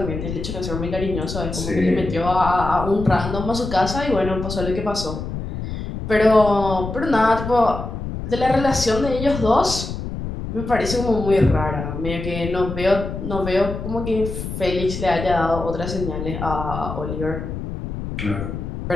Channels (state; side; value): noise; left; rumble, 6 dB below the sound